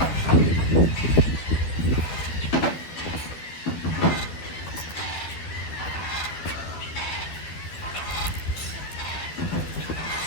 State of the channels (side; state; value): right; late; 12 ms